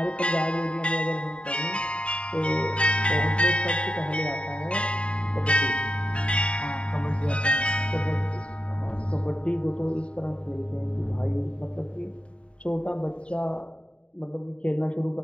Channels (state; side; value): late; right; 0.059 ms